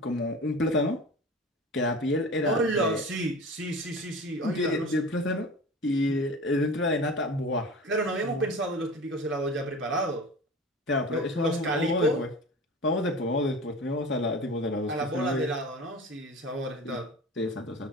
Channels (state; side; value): normal; both; correlation 0.35